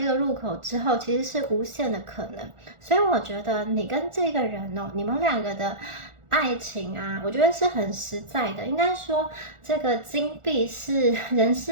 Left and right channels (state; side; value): late; left; 1.4 ms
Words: 个入口之后，其实是无限的可能。所以我觉得你跟这个人哦，你们两个的爱情啊，我觉得是很实在的。应该说，这个金币是人